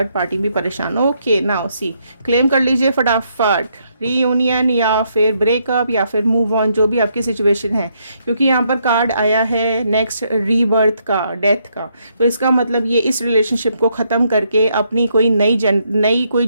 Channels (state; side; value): inverted; both; correlation -0.75